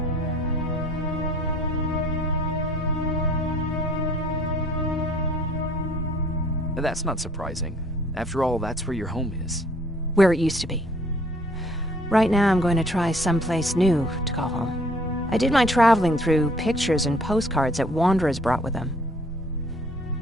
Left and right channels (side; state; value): both; normal; correlation 0.57